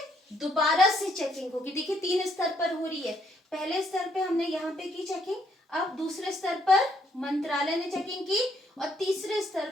दोबारा से चेकिंग होगी। देखिए 3 स्तर पर हो रही है। पहले स्तर पे हमने यहाँ पे की चेकिंग, अब दूसरे स्तर पर मंत्रालय ने चेकिंग की, और तीसरे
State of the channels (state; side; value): normal; both; correlation 0.71